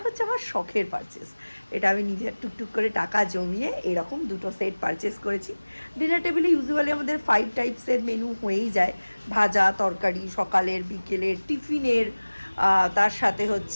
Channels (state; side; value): inverted; both; correlation -1.00